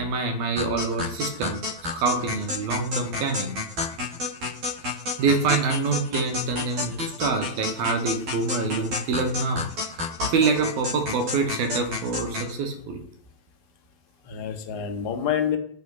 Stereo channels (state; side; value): late; left; 12 ms